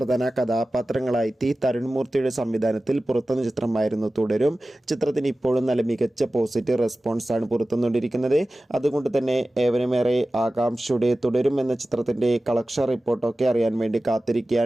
കഥാപാത്രങ്ങളായി തരുൺമൂർത്തിയുടെ സംവിധാനത്തിൽ പുറത്തുവന്ന ചിത്രമായിരുന്നു തുടരും. ചിത്രത്തിന് ഇപ്പോഴും നല്ല മികച്ച പോസിറ്റീവ് റെസ്പോൺസാണ് പുറത്തുവന്നുകൊണ്ടിരിക്കുന്നത്. അതുകൊണ്ട് തന്നെ ഏവരുമേറെ ആകാംക്ഷയുടെ തുടരും എന്ന ചിത്രത്തിൻ്റെ കളക്ഷൻ റിപ്പോർട്ടൊക്കെ അറിയാൻ വേണ്ടി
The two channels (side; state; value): both; normal; correlation 0.96